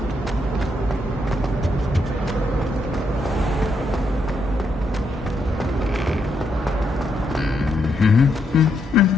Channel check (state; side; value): normal; both; correlation 0.78